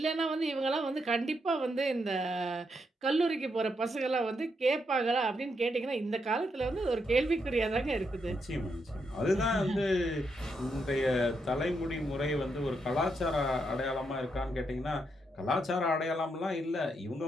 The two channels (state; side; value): normal; both; correlation 0.80